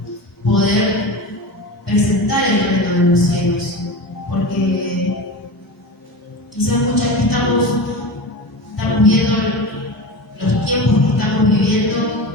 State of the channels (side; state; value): both; normal; correlation 0.27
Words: poder presentar el reino de los cielos, porque quizás muchas veces estamos viendo los tiempos que estamos viviendo